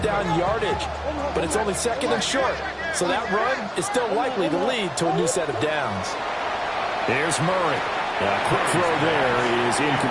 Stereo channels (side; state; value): both; identical; correlation 1.00